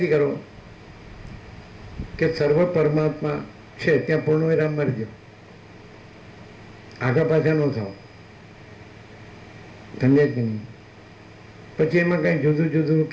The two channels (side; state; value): both; identical; correlation 1.00